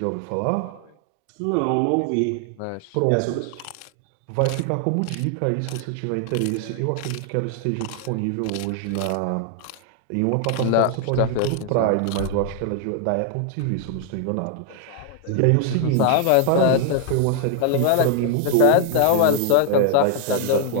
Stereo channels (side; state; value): both; different; correlation 0.00